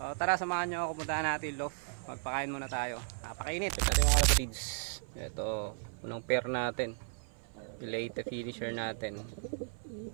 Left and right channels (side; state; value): left; silent; 54 dB below the other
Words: tara, samahan nyo ako, puntahan natin loft. Magpakain muna tayo. Napakainit. Ito yung mga feeds. Ito, unang pair natin. Leyte finisher natin.